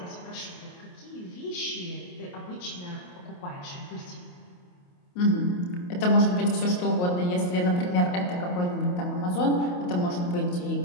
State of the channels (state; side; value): late; right; 28 ms